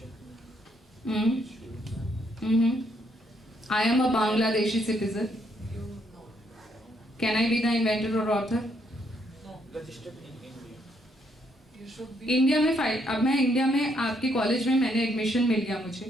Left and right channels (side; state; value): both; normal; correlation 0.73